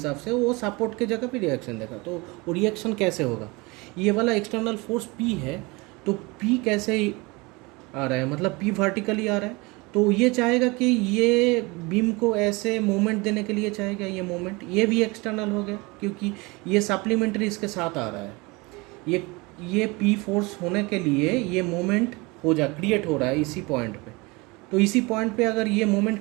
से वो सपोर्ट के जगह पे रिएक्शन देगा। तो वो रिएक्शन कैसे होगा, ये वाला एक्सटर्नल फोर्स पी है, तो पी कैसे आ रहा है, मतलब पी वर्टिकली आ रहा है। तो ये चाहेगा कि ये बीम को ऐसे मूवमेंट देने के लिए चाहेगा, ये मूवमेंट ये भी एक्सटर्नल हो गया क्योंकि ये सप्लीमेंट्री इसके साथ आ रहा है। ये पी फोर्स होने के लिए ये मूवमेंट क्रिएट हो रहा है इसी पॉइंट पे। तो इसी पॉइंट पे अगर ये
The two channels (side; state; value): left; quieter; 25.3 dB